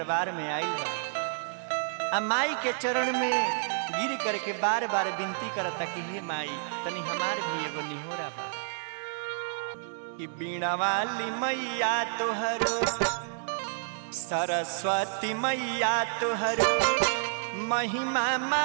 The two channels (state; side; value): silent; left; digital silence